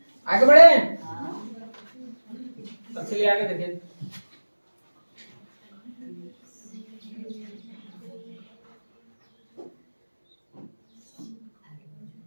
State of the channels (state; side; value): inverted; both; correlation -1.00